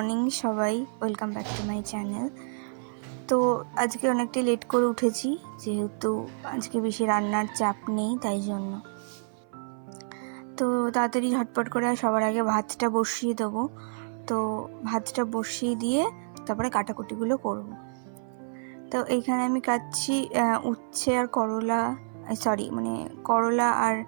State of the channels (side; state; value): left; silent; 56 dB below the other